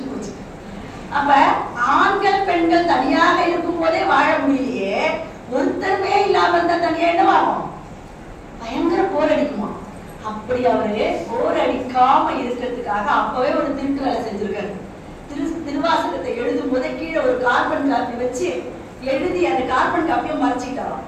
அப்ப ஆண்கள் பெண்கள் தனியாக இருக்கும் போதே வாழ முடியலையே, ஒருத்தருமே இல்லாம இருந்தா தனியா என்னவாகும்? பயங்கர போர் அடிக்குமா? அப்படி அவரு போர் அடிக்காம இருக்கிறதுக்காக அப்பவே ஒரு திருட்டு வேலை செஞ்சிருக்காரு. திருவாசகத்தை எழுதும் போதே கீழே ஒரு கார்பன் காப்பி வச்சு எழுதி அந்த கார்பன் காப்பியை மறைச்சிட்டாராம்.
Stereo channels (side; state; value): both; identical; correlation 1.00